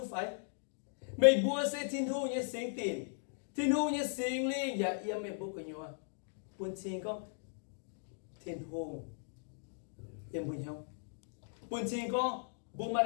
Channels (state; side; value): silent; right; digital silence